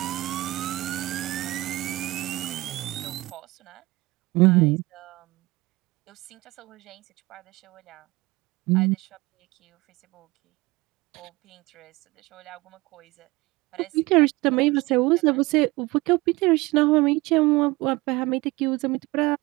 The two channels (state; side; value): quieter; left; 21.1 dB